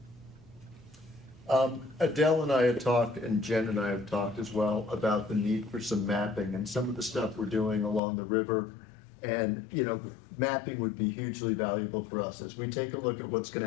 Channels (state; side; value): drops out; right; at 8.0 s